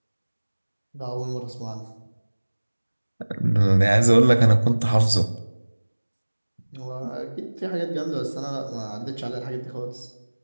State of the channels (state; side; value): inverted; both; correlation -1.00